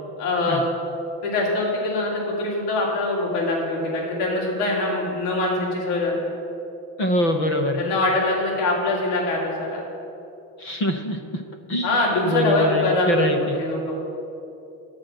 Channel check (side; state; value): right; late; 5.9 ms